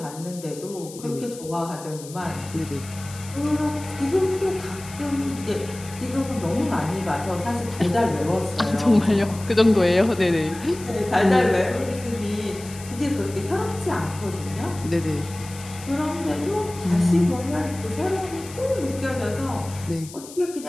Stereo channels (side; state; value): left; noise; hiss, 16 dB below the sound